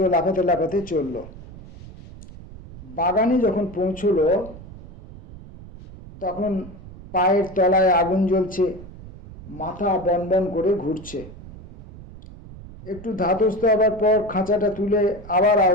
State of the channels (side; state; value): right; noise; rumble, 17 dB below the sound